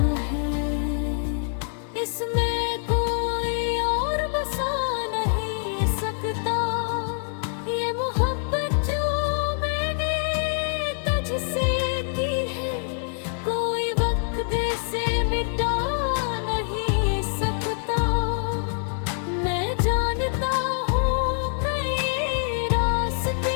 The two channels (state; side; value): silent; right; 60 dB below the other